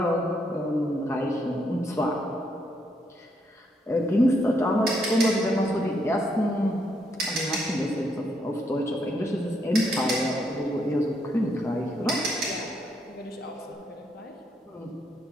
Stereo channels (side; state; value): both; normal; correlation 0.76